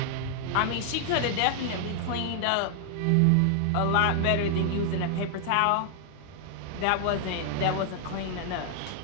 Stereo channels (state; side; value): different; both; correlation 0.00